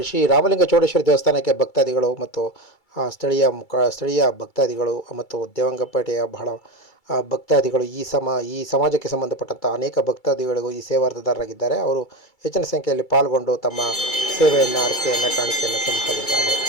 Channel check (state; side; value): late; right; 2.3 ms